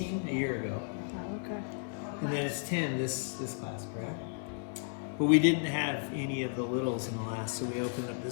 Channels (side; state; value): right; silent; digital silence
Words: a year ago, Oh, okay. and then it's 10 this class, correct? But we didn't have any of the littles in the last, so we opened up